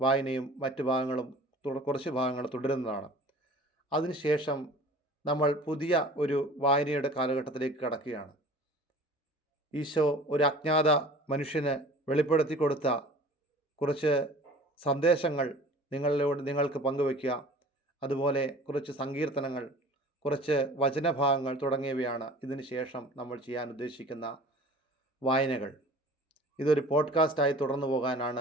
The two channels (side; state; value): both; normal; correlation 0.44